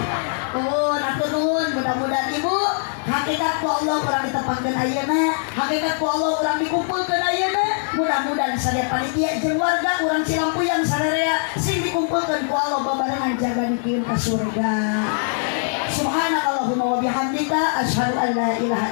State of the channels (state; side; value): silent; right; digital silence